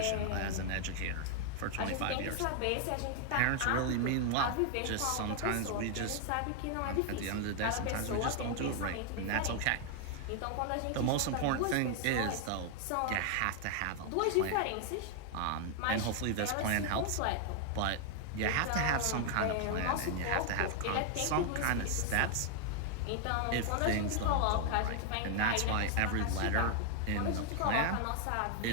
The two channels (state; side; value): different; both; correlation 0.00